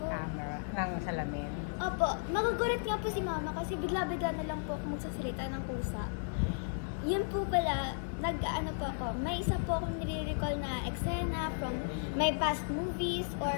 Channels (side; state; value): right; silent; 55 dB below the other